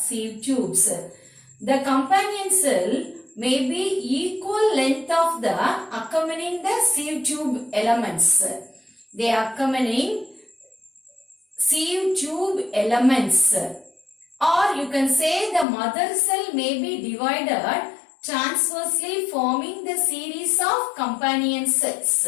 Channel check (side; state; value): right; drops out; at 15.7 s